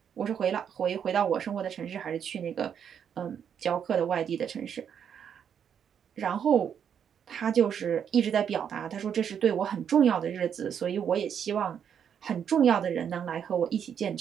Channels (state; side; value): quieter; left; 8.1 dB